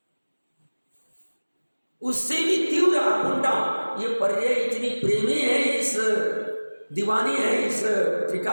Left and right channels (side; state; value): both; inverted; correlation -1.00